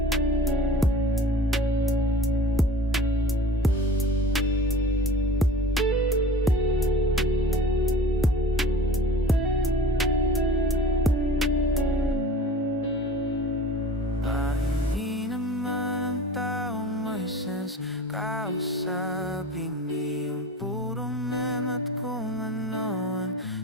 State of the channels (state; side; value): normal; both; correlation 0.40